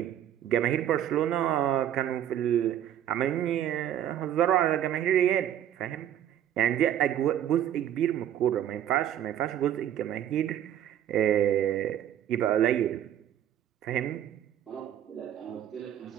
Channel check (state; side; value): quieter; left; 10.9 dB